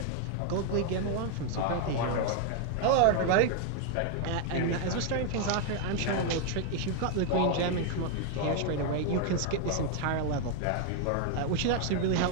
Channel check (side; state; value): both; different; correlation 0.00